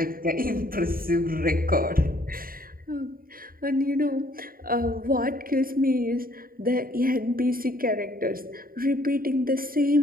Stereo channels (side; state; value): left; late; 0.42 ms